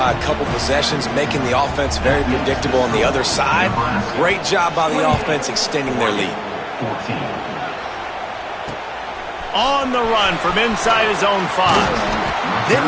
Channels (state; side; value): identical; both; correlation 1.00